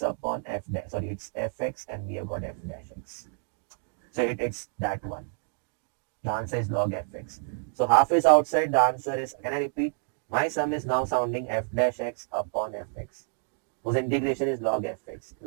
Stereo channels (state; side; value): silent; left; 59 dB below the other